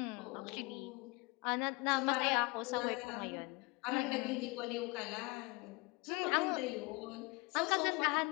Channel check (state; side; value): quieter; right; 26.5 dB